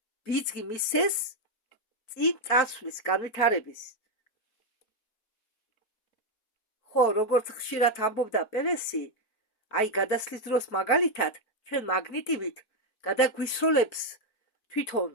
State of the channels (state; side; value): late; right; 4.2 ms